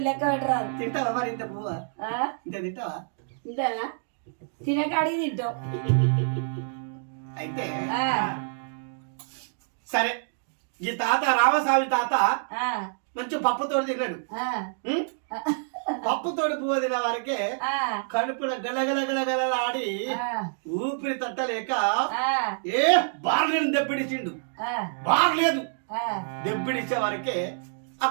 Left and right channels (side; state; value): left; silent; digital silence